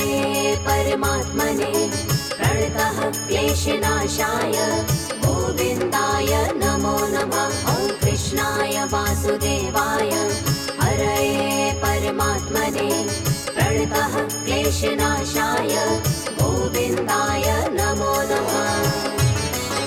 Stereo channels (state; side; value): identical; both; correlation 1.00